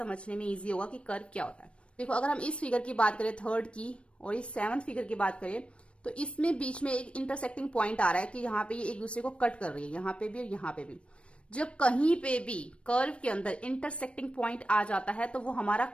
में इजी होगा कि कर्व क्या होता है। देखो, अगर हम इस फिगर की बात करें, थर्ड की, और इस 7th फिगर की बात करें तो इसमें बीच में एक इंटरसेक्टिंग पॉइंट आ रहा है कि यहाँ पे ये एक दूसरे को कट कर रही है, यहाँ पे भी और यहाँ पे भी। जब कहीं पे भी कर्व के अंदर इंटरसेक्टिंग पॉइंट आ जाता है तो वो हमारा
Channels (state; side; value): late; right; 0.060 ms